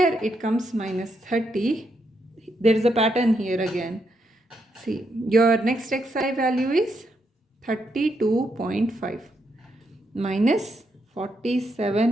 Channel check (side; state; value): both; normal; correlation 0.79